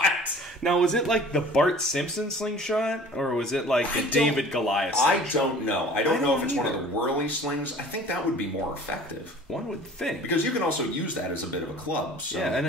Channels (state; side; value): normal; both; correlation 0.47